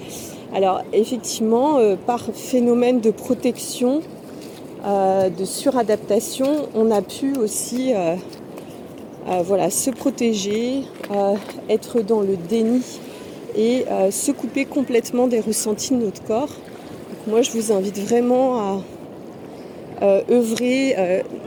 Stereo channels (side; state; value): both; identical; correlation 1.00